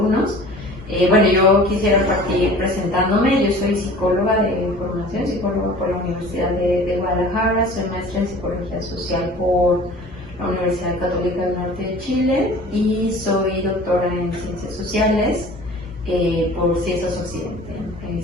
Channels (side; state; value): both; normal; correlation 0.44